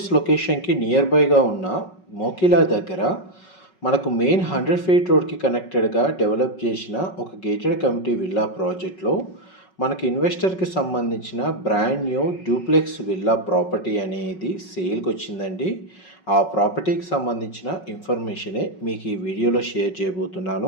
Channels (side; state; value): right; late; 5.4 ms